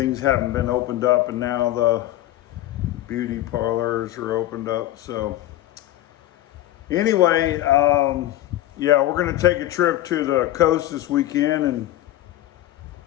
haven't been opened up, and now the beauty parlors are opened up. So anyway, yeah, we're going to take a trip to the coast this weekend, and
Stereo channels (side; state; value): right; quieter; 14.4 dB